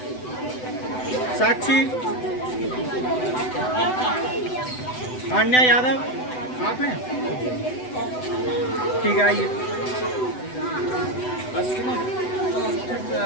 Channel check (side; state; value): right; late; 8.0 ms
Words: साक्षी, आन्या यादव, आप हैं? ठीक है, आइए। बस